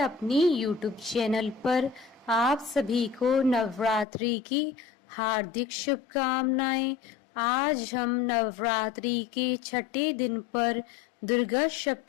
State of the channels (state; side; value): drops out; right; at 4.0 s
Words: यूट्यूब चैनल पर। आप सभी को नवरात्रि की हार्दिक शुभकामनाएं। आज हम नवरात्रि के छठे दिन पर दुर्गा